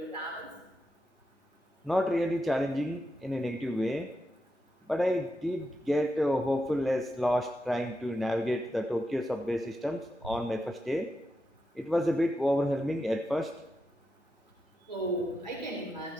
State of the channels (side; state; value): both; normal; correlation 0.86